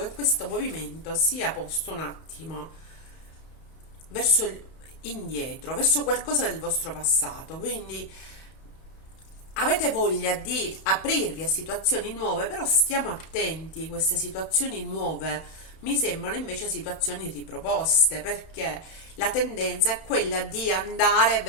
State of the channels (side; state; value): right; late; 31 ms